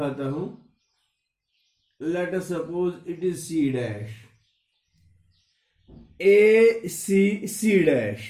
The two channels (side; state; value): both; identical; correlation 1.00